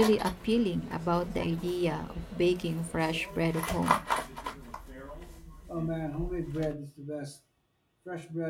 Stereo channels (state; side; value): identical; both; correlation 1.00